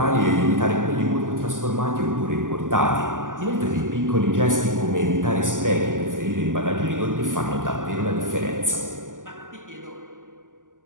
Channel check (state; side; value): late; left; 0.88 ms